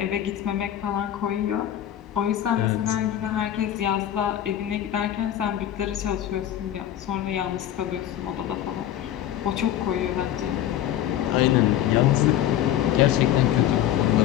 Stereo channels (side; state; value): right; quieter; 11.6 dB